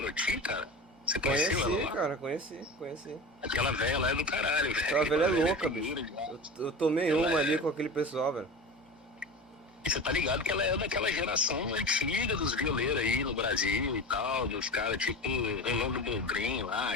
cara? Você conheceu ela Conheci, lá? cara, conheci. Aquela velha lá é do caralho, velho. Aquela velha é louca, tem bicho. dura demais. Eu tomei Ela uma ali é. com aquele pessoal, velho. E você tá ligado que ela é daquela geração antiga dos violeiros aí no Brasil e tal, dos caras tipo Rolando Boldrin lá,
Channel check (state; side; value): normal; both; correlation 0.30